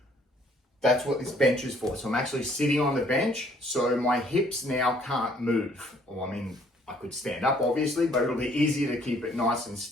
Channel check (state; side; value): normal; both; correlation 0.62